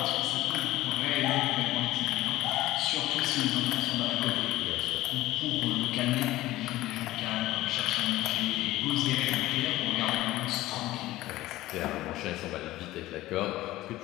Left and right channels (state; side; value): quieter; right; 16.7 dB